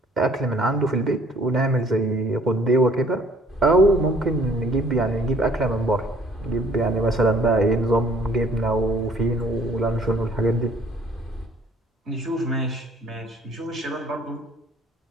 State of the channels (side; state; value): both; normal; correlation 0.58